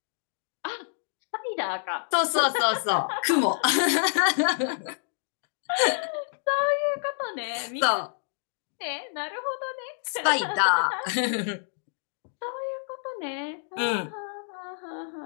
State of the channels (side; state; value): right; silent; digital silence